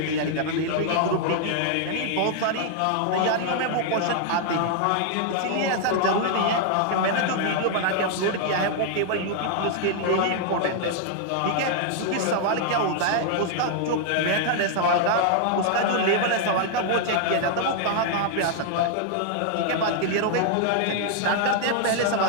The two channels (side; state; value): both; different; correlation 0.00